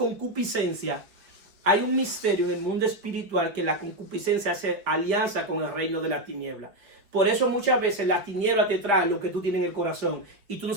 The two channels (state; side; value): late; left; 5.2 ms